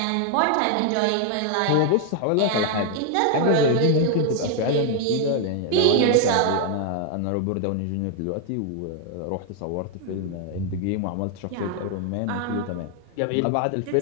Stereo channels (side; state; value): both; different; correlation 0.00